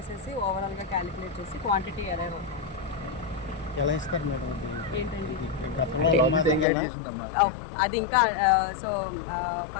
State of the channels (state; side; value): drops out; right; at 6.7 s